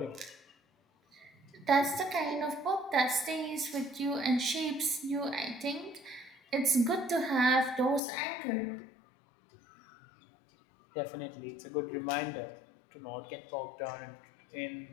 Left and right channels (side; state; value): right; drops out; at 8.0 s